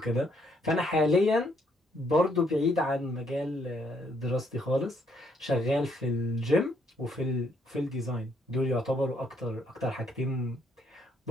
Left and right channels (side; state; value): both; normal; correlation 0.70